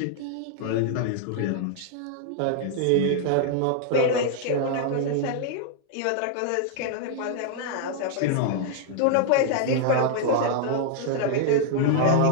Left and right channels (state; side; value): different; both; correlation 0.00